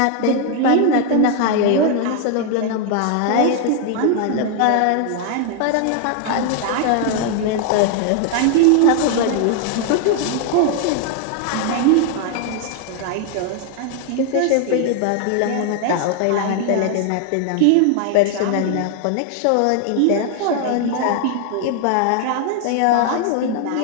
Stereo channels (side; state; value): both; different; correlation 0.00